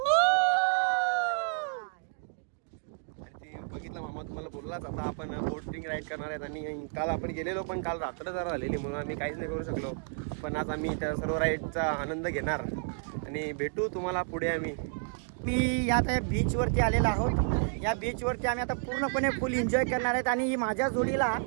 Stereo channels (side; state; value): left; silent; 57 dB below the other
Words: बघितलं मामा तुम्हाला बोललाच. आता आपण बोटिंग राईड करणार आहेत. आणि काल आपण गेलेलो पण काल रात्र जरा झालेली म्हणून आम्ही काहीच नाही करू शकलो. पण आज आम्ही त्या सर्व राईडचा आनंद घेणार आणि भेटू तुम्हाला पुढे. मी यात बीचवरती आलेलो आहोत. या बीचवरती आम्ही आता पूर्णपणे फुल एन्जॉय करणार आहेत. आणि ही माझ्या जोडीला